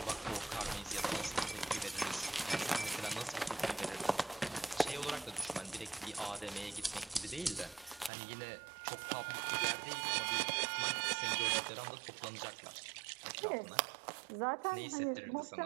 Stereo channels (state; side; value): drops out; left; at 8.1 s